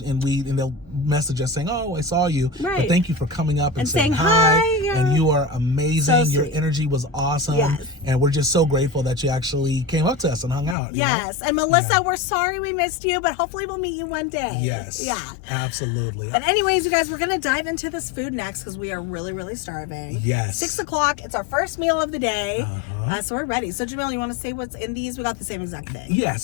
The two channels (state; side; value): drops out; right; at 10.8 s